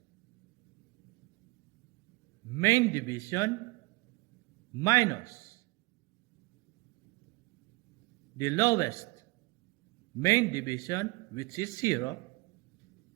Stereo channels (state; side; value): quieter; left; 24.0 dB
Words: main division minus the lowest main division, which is 0,